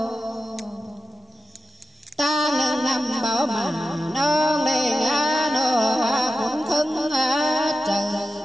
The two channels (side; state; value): both; normal; correlation 0.92